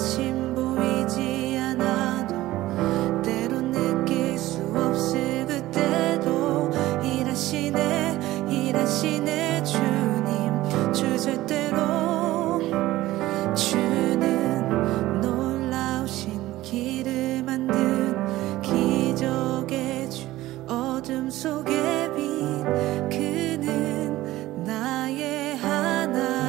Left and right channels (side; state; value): left; quieter; 16.5 dB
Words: 보이지 않아도 때론 느낄 수 없을 그때도 일하시네 주님 주제대로. 주는 놀라우신 길을 만든 기적의 주 어둠 속의 빛 그는 나의